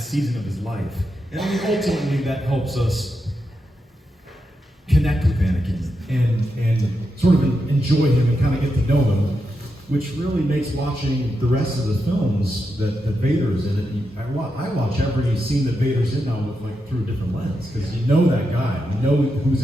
of his life. And I mean, ultimately, that helps us connect with Anakin and sort of enjoy him and kind of get to know him, which really makes watching the rest of the films that Vader's in it. I watch every scene that Vader's in now with, like, through a different lens, because you know that guy, you know who's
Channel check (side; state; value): both; normal; correlation 0.86